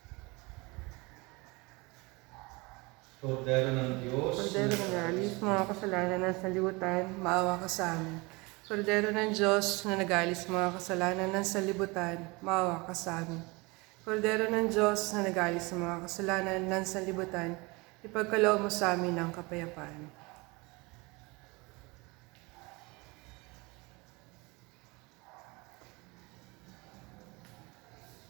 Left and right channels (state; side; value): quieter; left; 25.7 dB